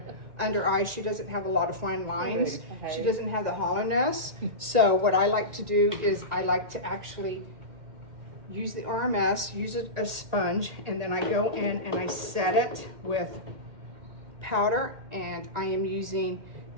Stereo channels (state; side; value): late; left; 2.1 ms